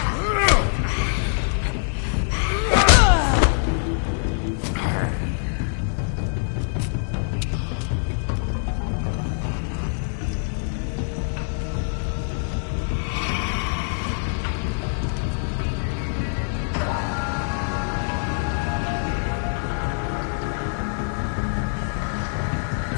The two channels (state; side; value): silent; right; digital silence